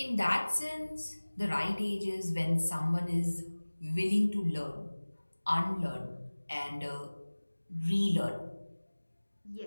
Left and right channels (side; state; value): both; inverted; correlation -1.00